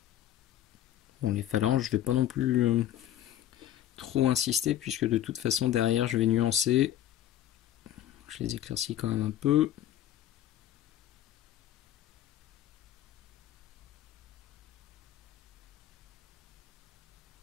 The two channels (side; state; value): right; quieter; 11.9 dB